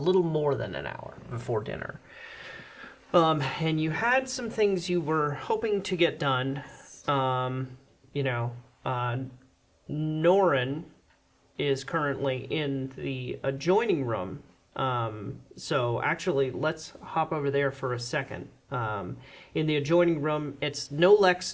more than an hour before dinner. And you had some things you were hoping to get done. Norren is currently in the adjoining room. So actually, let's hop over there for a second. In the adjoining room, it's no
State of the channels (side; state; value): both; identical; correlation 1.00